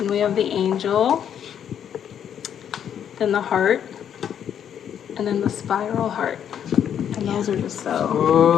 we have the angel, then the heart, and then the spiral heart. And those are just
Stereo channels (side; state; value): right; quieter; 9.0 dB